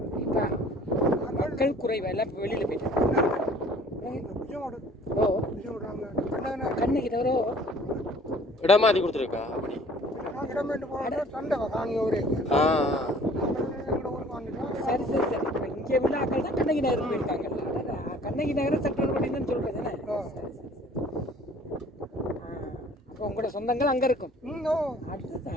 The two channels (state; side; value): normal; both; correlation 0.53